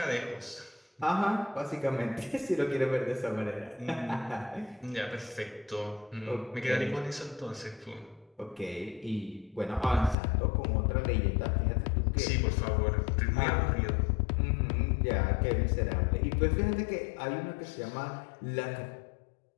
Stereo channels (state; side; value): drops out; right; at 10.2 s